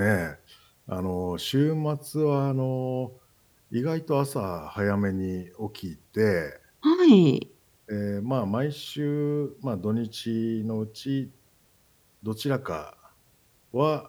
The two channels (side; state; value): both; identical; correlation 1.00